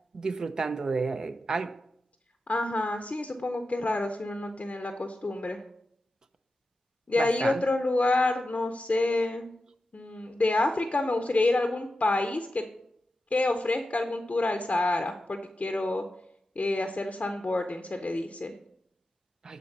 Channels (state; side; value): normal; both; correlation 0.91